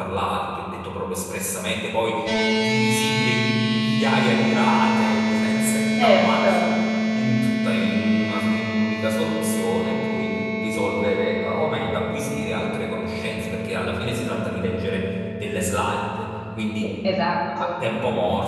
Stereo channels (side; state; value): both; identical; correlation 1.00